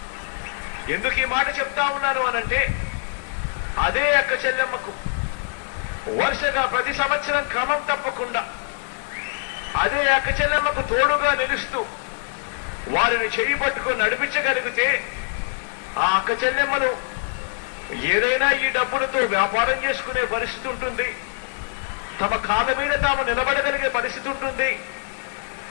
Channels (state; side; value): silent; right; 63 dB below the other